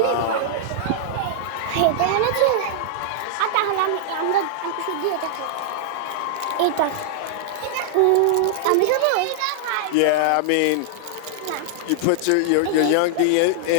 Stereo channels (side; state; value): both; different; correlation -0.01